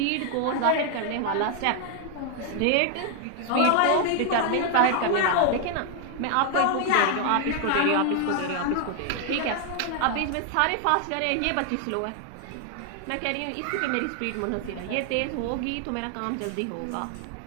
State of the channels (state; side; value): different; both; correlation 0.00